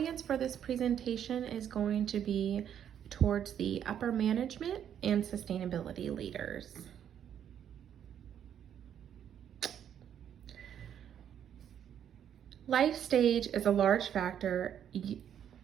for this presentation is going to be towards the upper management and sustainability leaders. Life stage is a large factor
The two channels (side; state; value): left; quieter; 9.4 dB